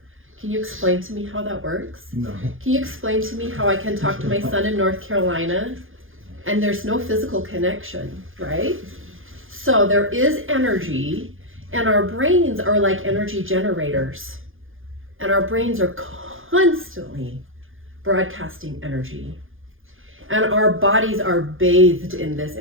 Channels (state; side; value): late; left; 0.59 ms